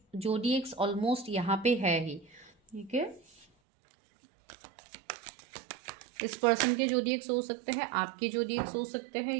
जोडिएक्स ऑलमोस्ट यहाँ पे है ही। ठीक है, इस पर्सन के जोडिएक्स हो सकते हैं, आपके जोडिएक्स हो सकते हैं,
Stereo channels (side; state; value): left; drops out; at 3.5 s